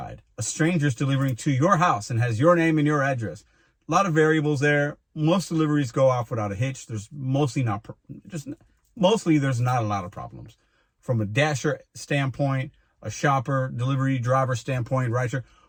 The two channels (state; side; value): identical; both; correlation 1.00